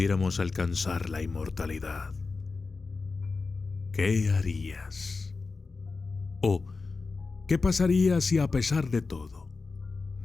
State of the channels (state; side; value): quieter; right; 4.1 dB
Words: alcanzar la inmortalidad. ¿Qué harías? ¿O qué pasaría si a pesar de todo